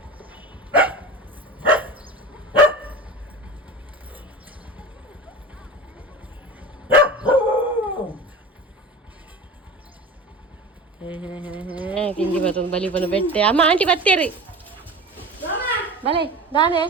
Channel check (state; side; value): normal; both; correlation 0.32